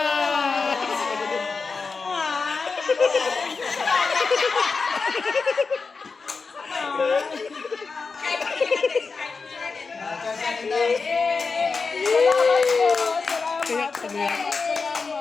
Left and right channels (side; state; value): right; quieter; 4.6 dB